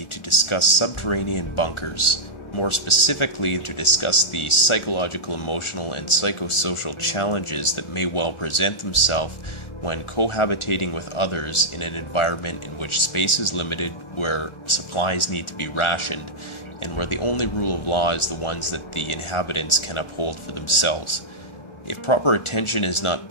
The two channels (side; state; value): right; late; 1.4 ms